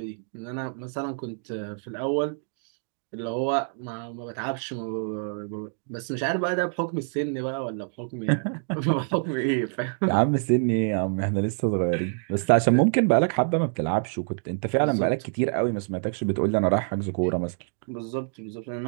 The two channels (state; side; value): silent; left; 61 dB below the other